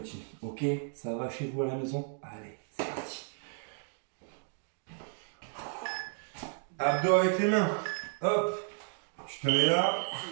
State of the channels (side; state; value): left; silent; 56 dB below the other